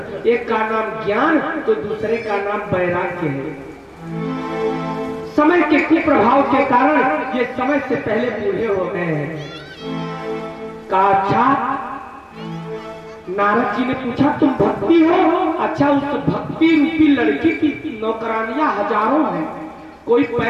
एक का नाम ज्ञान तो दूसरे का नाम वैराग्य है। समय के कुप्रभाव के कारण ये समय से पहले बूढ़े हो गए हैं। कहा अच्छा, नारद जी ने पूछा तुम भक्ति हो? अच्छा, उस भक्ति रूपी लड़की की नौकरानियां हजारों हैं। कोई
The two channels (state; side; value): identical; both; correlation 1.00